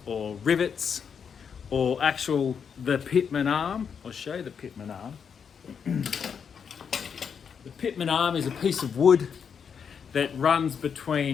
or rivets or the pitman arm. I'll show you the pitman arm. The pitman arm is a piece of wood that runs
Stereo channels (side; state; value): right; quieter; 6.9 dB